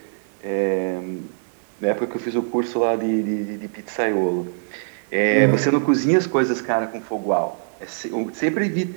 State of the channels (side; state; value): left; silent; 64 dB below the other